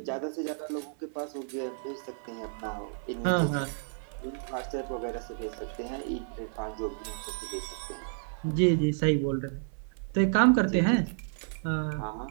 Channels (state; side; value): silent; left; 57 dB below the other